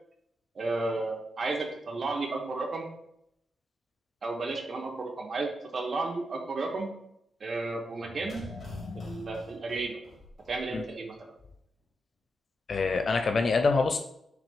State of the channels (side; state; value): both; normal; correlation 0.85